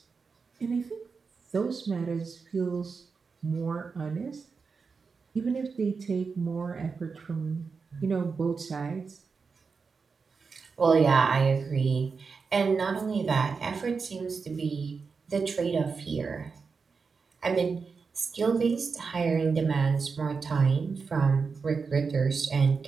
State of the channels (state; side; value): quieter; left; 5.0 dB